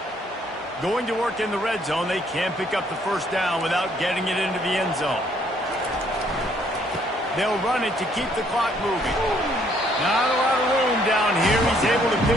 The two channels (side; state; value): both; normal; correlation 0.66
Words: Going to work in the red zone, they can't pick up the first down without getting it into the end zone. They'll run it to keep the clock moving. Not a lot of room down here. He's able to